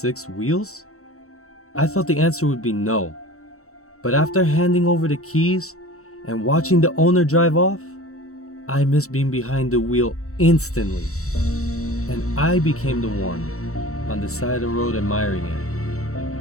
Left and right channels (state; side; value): late; right; 0.64 ms